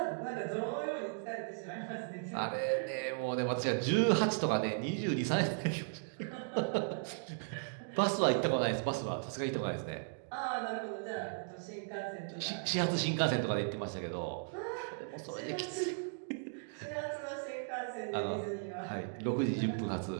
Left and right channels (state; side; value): silent; left; digital silence